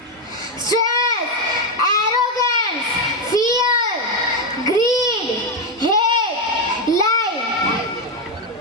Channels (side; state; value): both; normal; correlation 0.05